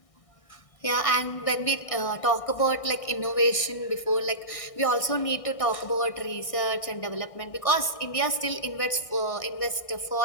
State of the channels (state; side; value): late; right; 1.6 ms